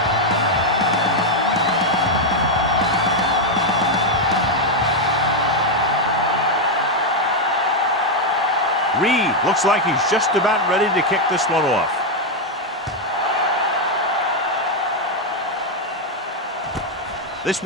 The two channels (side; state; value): both; normal; correlation 0.02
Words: Reed looks like he's just about ready to kick this one off. This